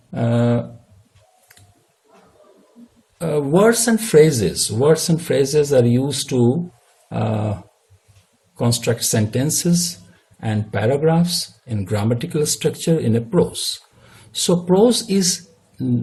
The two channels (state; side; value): identical; both; correlation 1.00